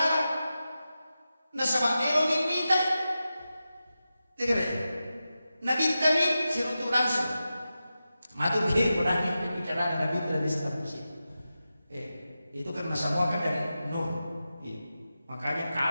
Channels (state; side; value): inverted; both; correlation -0.92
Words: Nasaba ero minta tegere nabi tadi sirutu langsung matu ke berani bicara nabi tidak bisa terus itu kan semua kan dari nur makanya